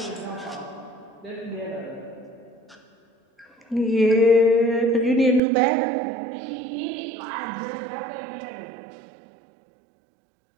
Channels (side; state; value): left; drops out; at 5.4 s